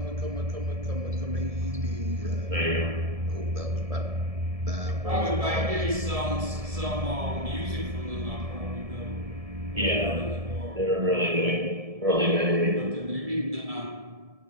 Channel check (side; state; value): left; late; 1.7 ms